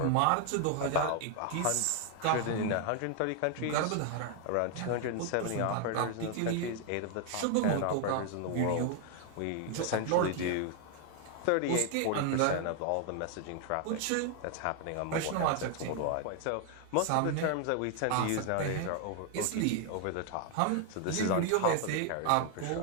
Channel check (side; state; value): both; different; correlation 0.00